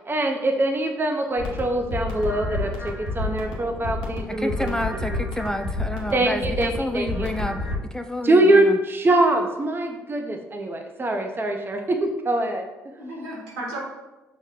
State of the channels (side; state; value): both; normal; correlation 0.69